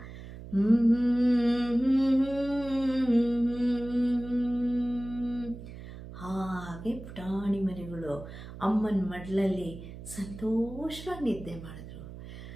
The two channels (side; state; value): right; noise; hum, 13 dB below the sound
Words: ಹಾಗೆ ಪುಟಾಣಿ ಮರಿಗಳು ಅಮ್ಮನ ಮಡ್ಲಲ್ಲಿ ಸಂತೋಷವಾಗಿ ನಿದ್ದೆ ಮಾಡಿದ್ರು.